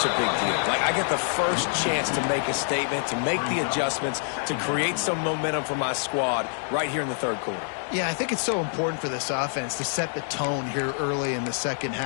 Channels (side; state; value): right; silent; 61 dB below the other